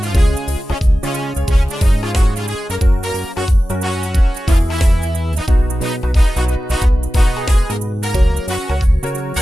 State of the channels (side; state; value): both; normal; correlation 0.94